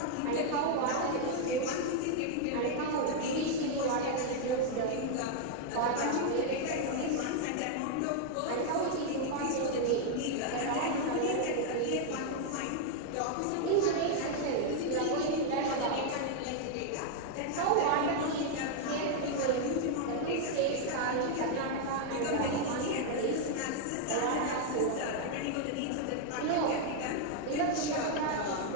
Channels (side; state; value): both; different; correlation 0.00